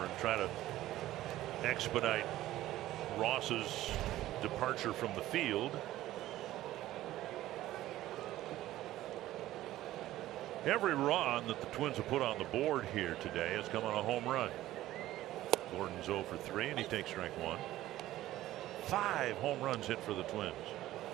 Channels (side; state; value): left; quieter; 14.9 dB